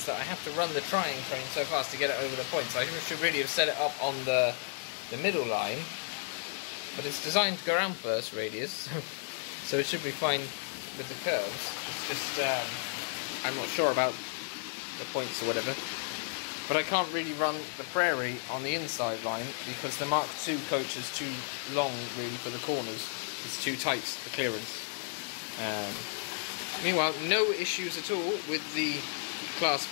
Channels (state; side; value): silent; right; digital silence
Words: that I have to run the Triang train so fast to get it over the points. I should really have set it up on the middle line. But it's designed to go around first radius, so it should be fine with the curves. It's just, I'm not sure about the points or whatever. But I can't really run the Prairie on the inside line because the Mark II coach is too long really for the corners. It's too tight, the clearance. Meanwhile, no issues at all with the Class